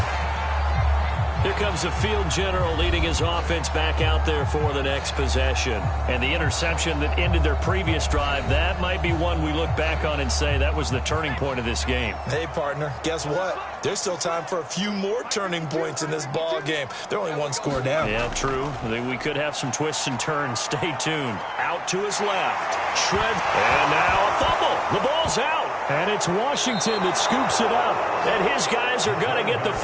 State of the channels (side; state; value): both; identical; correlation 1.00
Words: Here comes the field general leading his offense back out there for the next possession. And the interception that ended their previous drive, that might be one we look back on and say that was the turning point of this game. Hey, partner, guess what? There's still time for a few more turning points in this ball game. They're only one score down. Yeah, true. We could have some twists and turns. Stay tuned. Out to his left. Shred. And now a fumble. The ball's out. And it's Washington that scoops it up. And his guys are going to get the